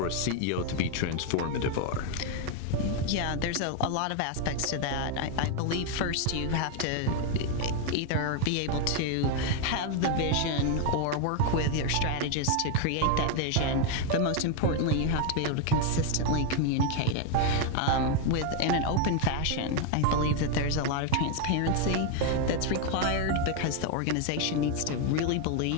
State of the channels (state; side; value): different; both; correlation 0.01